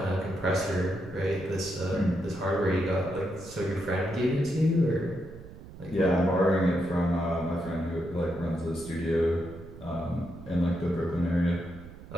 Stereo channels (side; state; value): right; noise; rumble, 16 dB below the sound